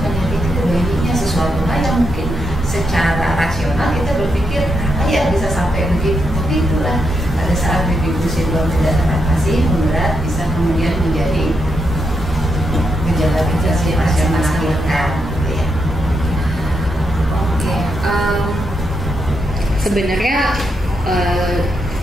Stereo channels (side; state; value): both; normal; correlation 0.82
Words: menyakiti bayinya, sesuatu hal yang mungkin secara rasional kita berpikir apa ya bisa sampai begitu, tapi itulah pada saat baby blues syndrome tidak teratasi, memberat, bisa kemudian menjadi gejala-gejala pasca melahirkan gitu ya. Oke, sebenarnya